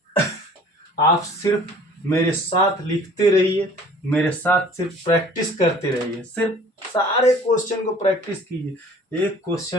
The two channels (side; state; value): both; normal; correlation 0.50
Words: आप सिर्फ मेरे साथ लिखते रहिए, मेरे साथ सिर्फ प्रैक्टिस करते रहिए, सिर्फ सारे क्वेश्चन को प्रैक्टिस कीजिए। एक